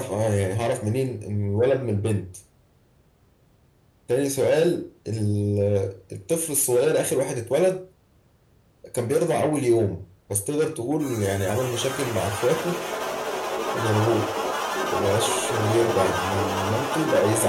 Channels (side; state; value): both; identical; correlation 1.00